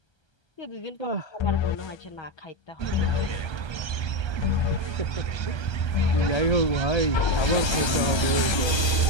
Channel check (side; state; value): right; late; 1.3 ms